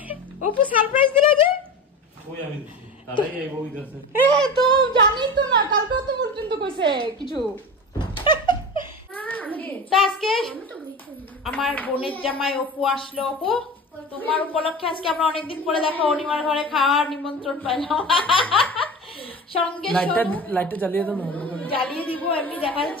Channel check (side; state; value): both; normal; correlation 0.31